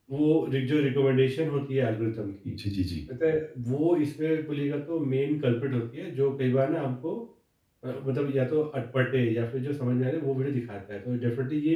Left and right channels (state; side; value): identical; both; correlation 1.00